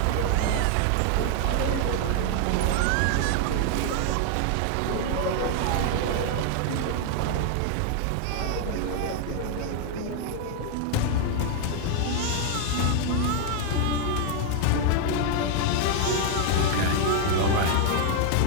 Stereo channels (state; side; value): different; both; correlation 0.00